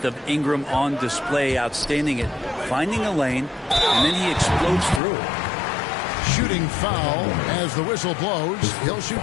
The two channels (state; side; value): drops out; right; at 5.0 s